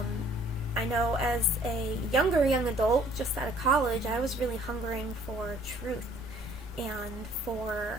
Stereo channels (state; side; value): normal; both; correlation 0.58